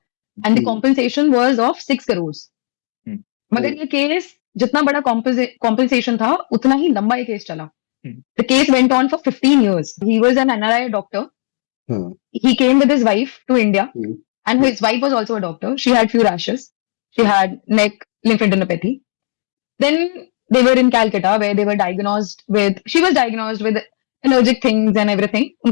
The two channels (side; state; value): right; silent; digital silence